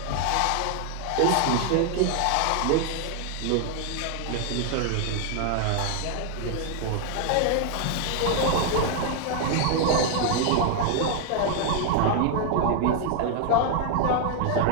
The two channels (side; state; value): both; different; correlation 0.00